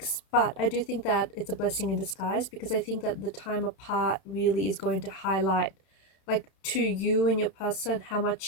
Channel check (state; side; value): late; right; 31 ms